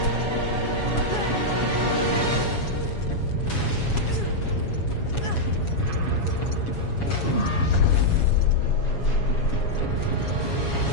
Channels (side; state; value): right; late; 7.2 ms